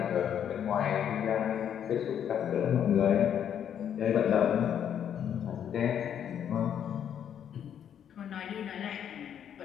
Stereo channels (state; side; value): quieter; right; 9.1 dB